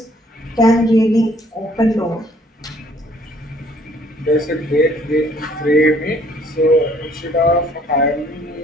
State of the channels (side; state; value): both; normal; correlation 0.61